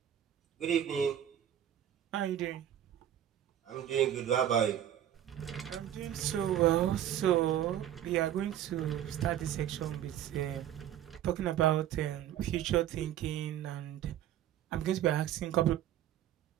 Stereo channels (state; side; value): quieter; left; 11.1 dB